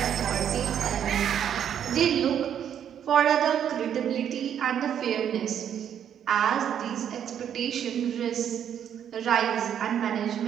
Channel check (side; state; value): left; quieter; 9.2 dB